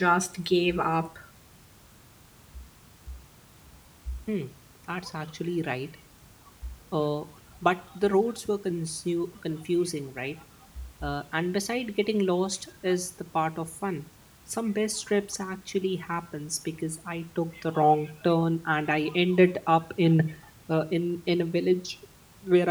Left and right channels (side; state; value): both; identical; correlation 1.00